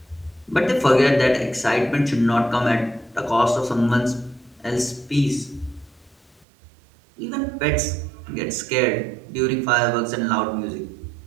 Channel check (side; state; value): left; drops out; at 6.5 s